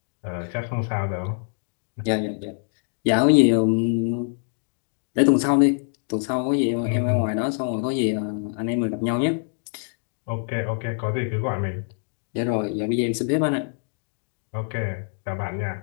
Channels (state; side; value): silent; right; digital silence